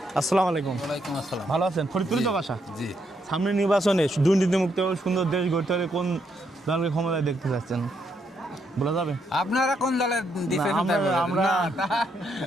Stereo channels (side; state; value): both; normal; correlation 0.77